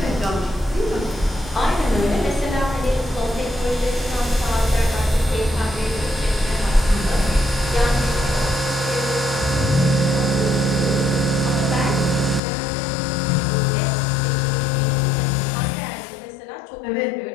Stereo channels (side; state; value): right; drops out; at 12.4 s